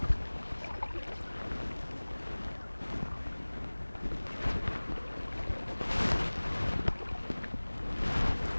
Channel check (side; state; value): both; inverted; correlation -1.00